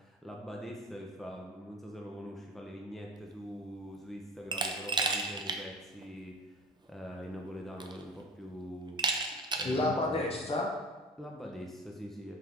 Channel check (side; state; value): both; normal; correlation 0.38